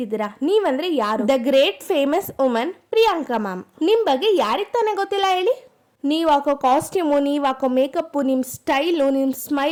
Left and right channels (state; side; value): identical; both; correlation 1.00